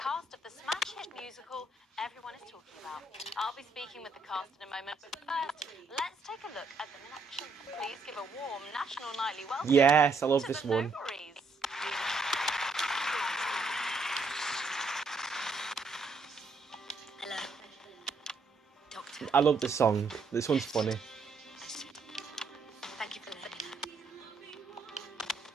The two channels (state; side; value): quieter; left; 3.6 dB